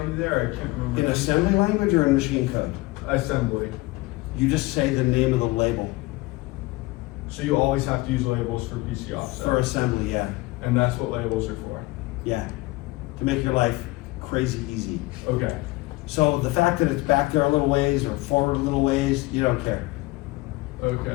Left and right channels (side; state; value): right; quieter; 21.5 dB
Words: there? I can't remember. In assembly language or in machine code? Assembly. You just say the name of the label. So you always have to use labels for PC offset. For assembly, yeah. And that's what labels are for. Yeah. To make your life crazy easy. Okay. So the fact that it's back there a little ways or forward a little ways, you don't care. Okay.